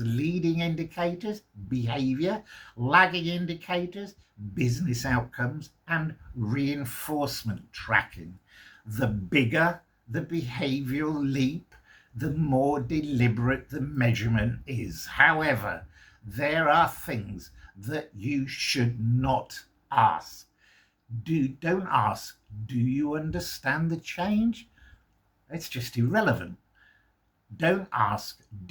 leading indicators, behavior, lagging indicators, business outcomes, and reinforcement tracking. The bigger the behavioral leap, the more deliberate the measurement is. However, there are things that you should not ask. Don't ask, do you understand the change? It's just irrelevant. Don't ask,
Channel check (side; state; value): both; identical; correlation 1.00